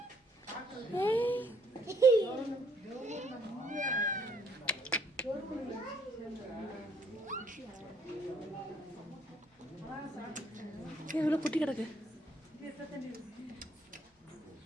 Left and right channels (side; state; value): both; normal; correlation 0.66